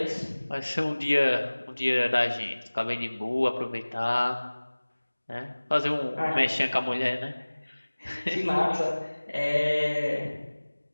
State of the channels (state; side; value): inverted; both; correlation -1.00